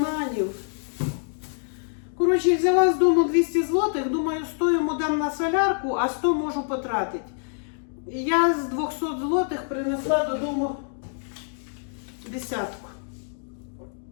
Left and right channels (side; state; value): right; silent; digital silence